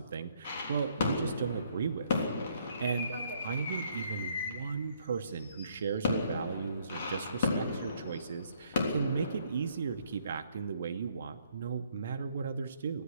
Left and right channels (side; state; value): both; inverted; correlation -0.68